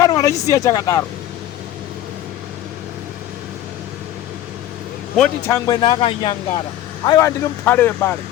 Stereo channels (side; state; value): right; quieter; 12.8 dB